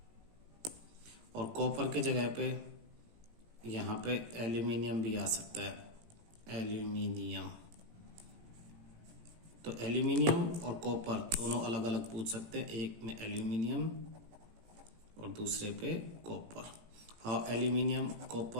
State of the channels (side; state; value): left; late; 18 ms